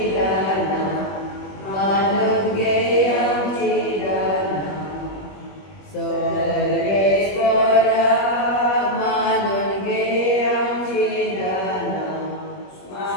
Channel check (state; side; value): late; right; 21 ms